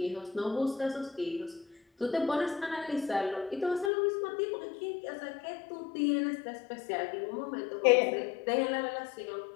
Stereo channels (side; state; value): right; drops out; at 3.9 s